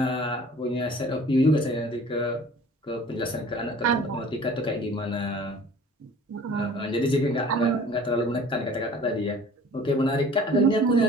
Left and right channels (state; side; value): normal; both; correlation 0.47